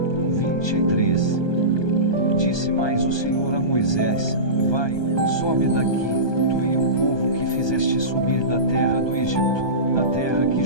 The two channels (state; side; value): late; right; 1.2 ms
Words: 23. Disse mais o Senhor a Moisés: vai, sobe daqui, tu e o povo que fizeste subir da terra do Egito, a terra que